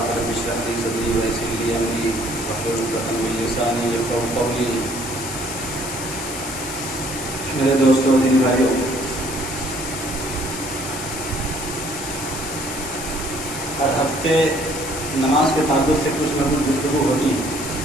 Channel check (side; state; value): left; noise; hiss, 8 dB below the sound